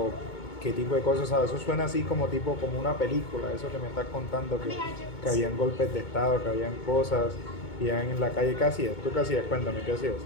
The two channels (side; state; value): right; late; 2.2 ms